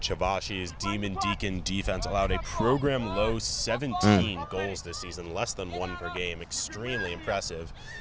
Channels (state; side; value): identical; both; correlation 1.00